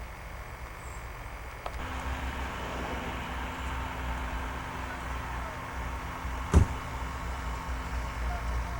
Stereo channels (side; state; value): both; identical; correlation 1.00